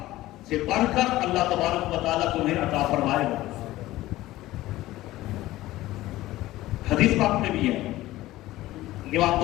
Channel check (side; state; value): right; quieter; 16.6 dB